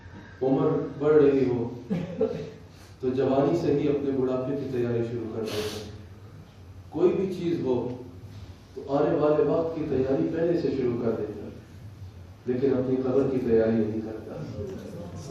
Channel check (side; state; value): both; identical; correlation 1.00